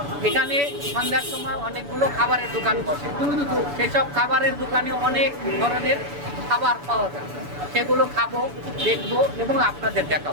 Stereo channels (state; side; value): late; left; 7.0 ms